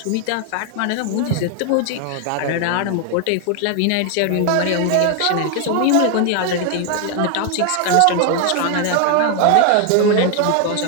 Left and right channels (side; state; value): both; different; correlation 0.00